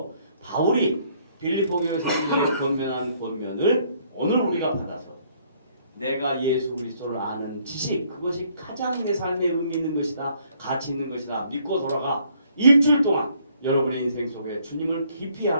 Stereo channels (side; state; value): both; inverted; correlation -0.65